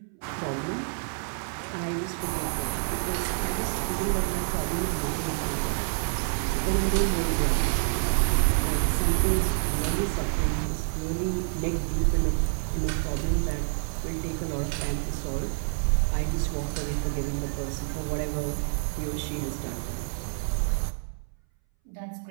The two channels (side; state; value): left; silent; 59 dB below the other